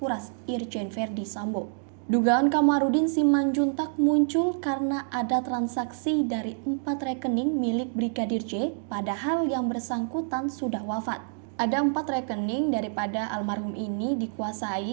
Irjen Verdi Sambo. Dugaan Kamarudin Simanjuntak muncul karena ada transaksi dari 4 rekening milik Brigadir J, padahal yang bersangkutan sudah wafat. Ada 4 rekening daripada almarhum ini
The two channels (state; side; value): silent; left; digital silence